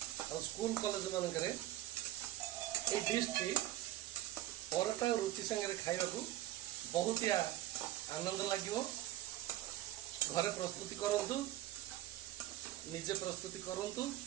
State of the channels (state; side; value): quieter; left; 14.5 dB